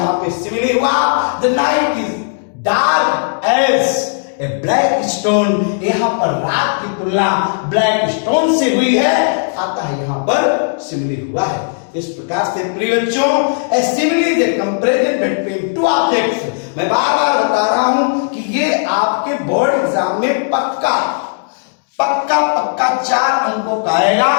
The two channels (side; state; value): right; silent; digital silence